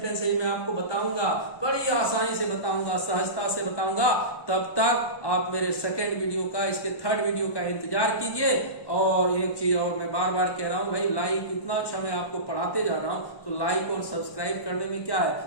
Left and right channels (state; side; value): late; right; 1.1 ms